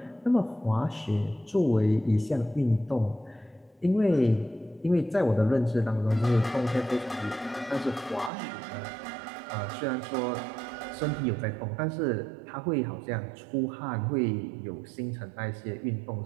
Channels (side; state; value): left; drops out; at 8.3 s